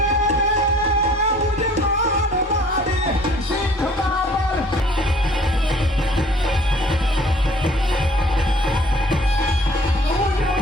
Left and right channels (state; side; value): normal; both; correlation 0.54